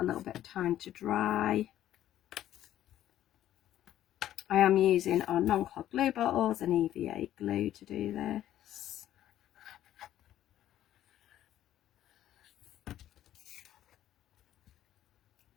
little bit of time to dry. I am using our non-clog glue bottles and EVA glue to do this.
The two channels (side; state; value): right; quieter; 12.4 dB